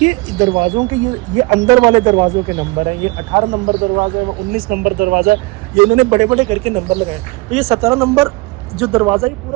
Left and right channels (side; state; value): left; quieter; 24.2 dB